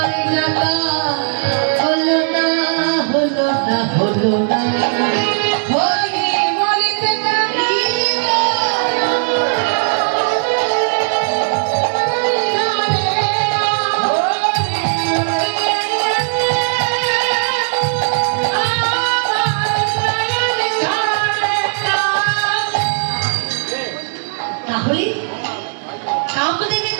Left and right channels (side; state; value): left; silent; digital silence